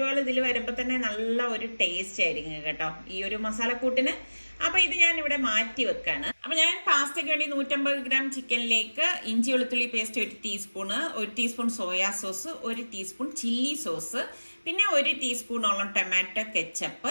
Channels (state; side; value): inverted; both; correlation -1.00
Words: ഇതിൽ വരുമ്പോ തന്നെ നല്ല ഒരു ടേസ്റ്റ് ആയിരിക്കും കേട്ടോ ഈ ഒരു മസാലക്കൂട്ടിന്. അപ്പൊ ഇത് ഞാൻ ഇവിടെ മാറ്റി വെക്കാണ്. അപ്പൊ ഞാൻ പാസ്തയ്ക്ക് വേണ്ടി 150 ഗ്രാം ചിക്കനിലേക്ക് ഇഞ്ചി വെളുത്തുള്ളി paste 1 teaspoon, 1 teaspoon soya sauce, 1 teaspoon chilli sauce, പിന്നെ 1 ടീസ്പൂണോളം ടൊമാറ്റോ